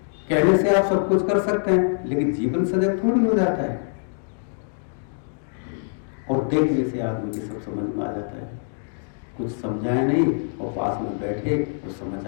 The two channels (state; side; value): silent; right; digital silence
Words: कहने से आप सब कुछ कर सकते हैं, लेकिन जीवन सजग थोड़ी हो जाता है। और देखने से आदमी की सब समझ में आ जाता है, कुछ समझाए नहीं और पास में बैठे तो समझ